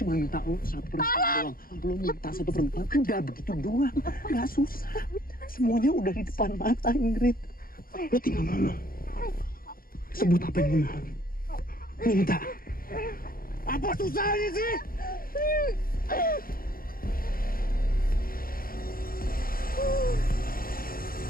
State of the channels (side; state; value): right; late; 0.42 ms